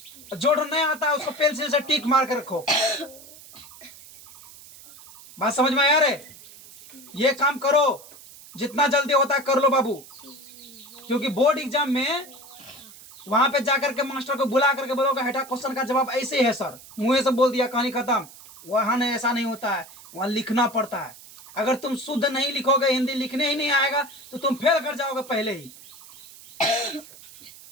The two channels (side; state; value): right; noise; hiss, 19 dB below the sound